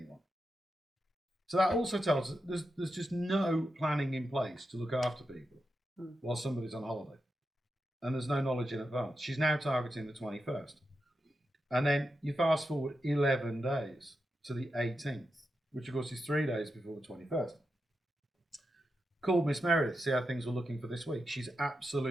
So that also tells us there's just no planning in place to look after people while somebody's on holiday. And there's no knowledge in advance. She's now targeting the 21st. And then you fast forward 11 days to the 18th, which of course is 3 days before the 21st. Called Miss Meredith to see how things were looking for this week. She's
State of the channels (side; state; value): both; normal; correlation 0.88